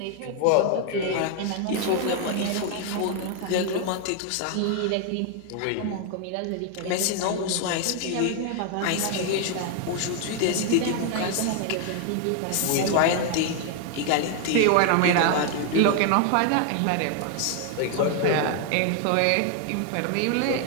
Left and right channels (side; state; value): both; different; correlation 0.00